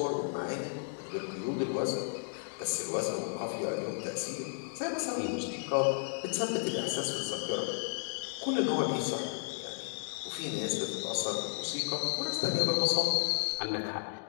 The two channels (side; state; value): right; silent; digital silence